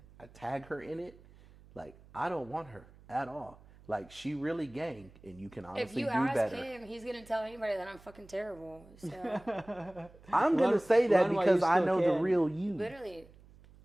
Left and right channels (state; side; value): noise; right; hum, 24 dB below the sound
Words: I tag her in it. Like, I don't want her at all. Like, she really gang, and you can honestly If you do ask better. him, he's gonna tell anybody that I'm fucking terrible. So I'm going to say that run while because you I still know the can. real you. literally,